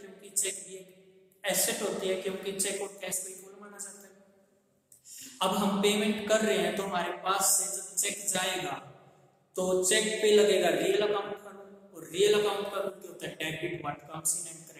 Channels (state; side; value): identical; both; correlation 1.00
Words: चेक भी एक एसेट होती है, क्योंकि चेक और कैश को इक्वल माना जाता है. अब हम पेमेंट कर रहे हैं तो हमारे पास से जब चेक जाएगा तो चेक पे लगेगा रियल अकाउंट का रूल, और रियल अकाउंट का रूल क्या होता है? Debit what comes in and